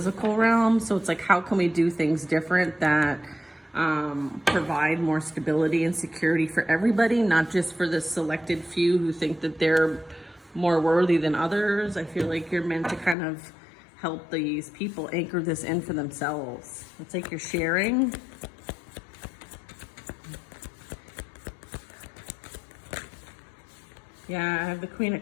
realm. So it's like, how can we do things different that provide more stability and security for everybody, not just for the selected few who think that they're more worthy than others. I feel like you're meant to kind of help these people anchor this in for themselves. It's like you're sharing. Yeah, I have the Queen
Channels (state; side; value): drops out; right; at 13.2 s